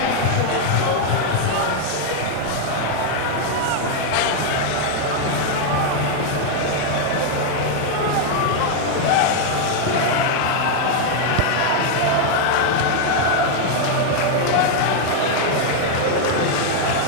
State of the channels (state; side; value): different; both; correlation 0.00